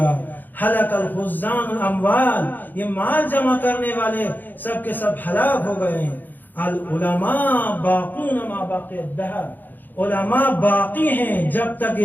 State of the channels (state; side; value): late; right; 0.087 ms